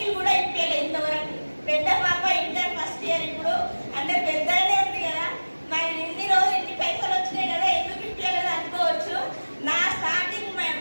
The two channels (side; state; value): both; inverted; correlation -1.00